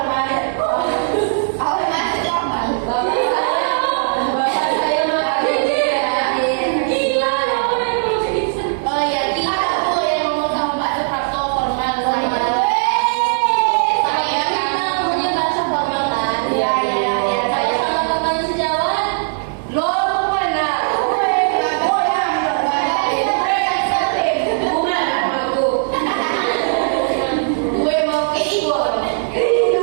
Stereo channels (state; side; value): silent; left; 66 dB below the other